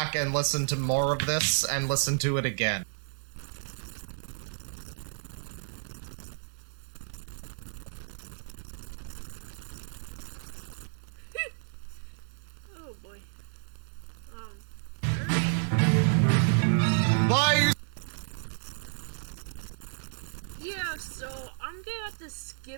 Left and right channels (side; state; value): left; silent; digital silence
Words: and listen to more of this and listen to it again. Oh boy. Bye! Yeah, so I'm gonna have to